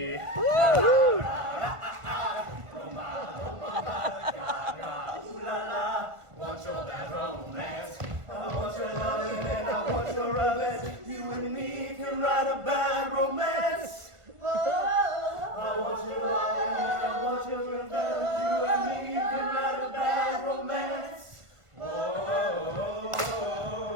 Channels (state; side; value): late; left; 1.5 ms